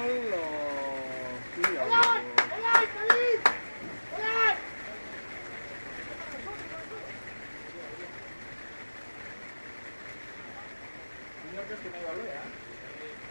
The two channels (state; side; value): inverted; both; correlation -1.00